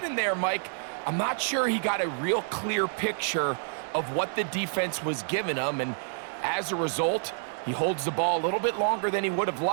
there, Mike. I'm not sure he got a real clear picture of what the defense was giving him, and as a result, he holds the ball a little bit longer than he would have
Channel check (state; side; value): silent; left; digital silence